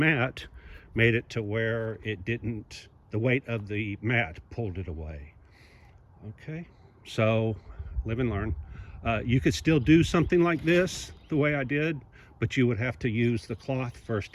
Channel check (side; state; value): both; identical; correlation 1.00